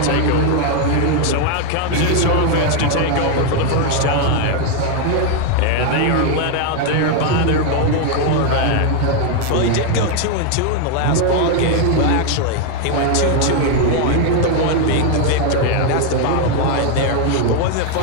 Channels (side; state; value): both; different; correlation 0.01